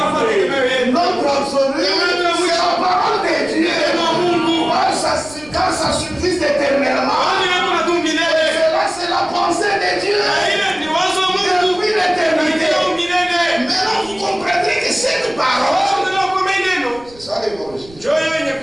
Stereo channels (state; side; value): noise; right; rumble, 23 dB below the sound